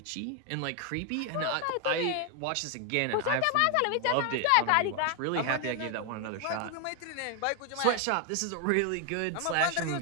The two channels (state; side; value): different; both; correlation 0.01